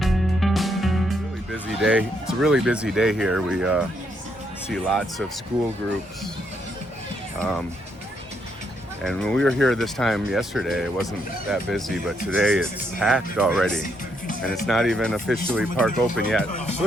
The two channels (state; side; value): normal; both; correlation 0.75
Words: Really busy day. It's a really busy day here. We see lots of school groups. And when we were here this time yesterday, it wasn't that busy, but today it's packed already. And it's not even officially park open yet. It